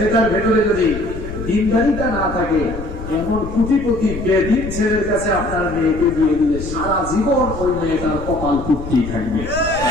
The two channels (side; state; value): left; noise; rumble, 10 dB below the sound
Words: ভেতরে যদি দিনদারিতা না থাকে, এমন কোটিপতি বেদিন ছেলের কাছে আপনার মেয়েকে দিয়ে দিলে সারা জীবন ওই মেয়েটার কপাল পুড়তেই থাকবে।